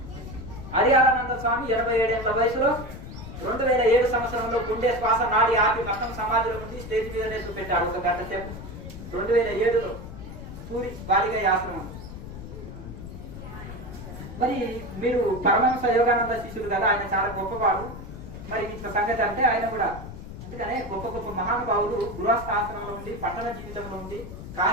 హరిహరానంద స్వామి 87 ఏళ్ల వయసులో 2007 సంవత్సరంలో గుండె శ్వాస నాడి ఆపి మొత్తం సమాధిలో ఉండి స్టేజ్ మీదనే చూపెట్టాడు 1 గంట సేపు. 2007లో పూరి బాలిగా ఆశ్రమం. మరి మీరు పరమహంస యోగానంద శిష్యులు కదా, ఆయన చాలా గొప్పవాడు. మరి ఇట్లా సంగతి అంటే ఆయన కూడా అందుకనే గొప్ప గొప్ప మహానుభావులు గృహస్థ ఆశ్రమంలో ఉండి, పట్టణ జీవితంలో ఉండి,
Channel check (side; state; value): left; noise; rumble, 11 dB below the sound